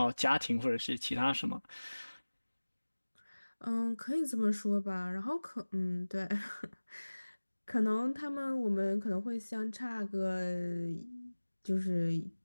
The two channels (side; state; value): both; inverted; correlation -1.00